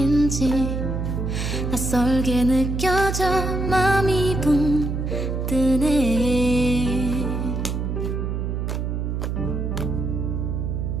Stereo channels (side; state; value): right; noise; hum, 2 dB below the sound